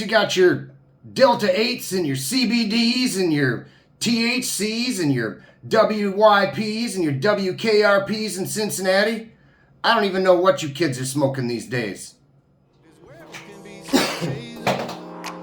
got your Delta 8s and your CBDs and your THCs and your WYPs and your WKRPs in Cincinnati. I don't even know what you kids are smoking these days.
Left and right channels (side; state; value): both; identical; correlation 1.00